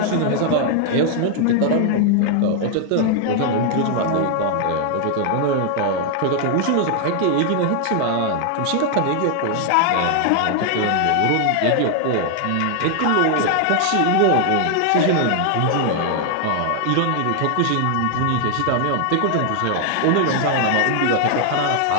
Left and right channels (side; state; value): both; different; correlation 0.00